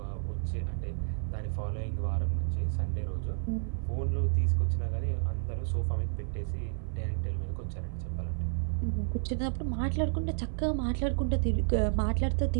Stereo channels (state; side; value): silent; left; 57 dB below the other